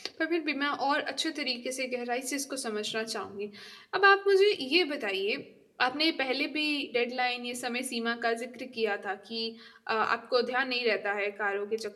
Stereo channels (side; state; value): both; identical; correlation 1.00